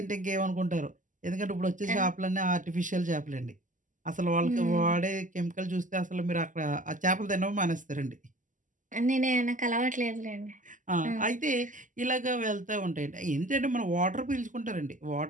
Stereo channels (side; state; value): left; late; 0.37 ms